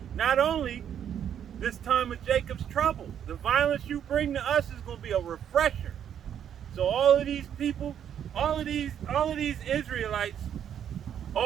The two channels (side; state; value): left; quieter; 9.3 dB